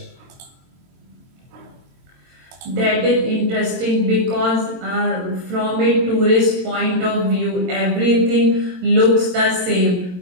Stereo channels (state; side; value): late; left; 22 ms